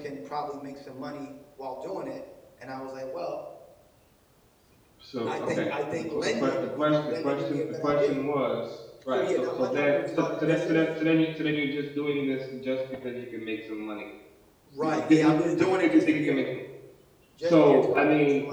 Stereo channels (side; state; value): both; identical; correlation 1.00